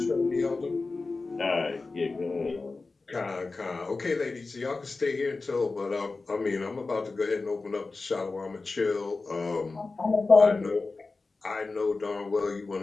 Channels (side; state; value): right; quieter; 3.8 dB